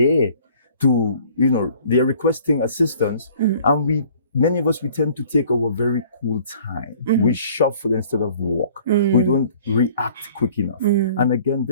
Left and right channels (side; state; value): both; inverted; correlation -0.53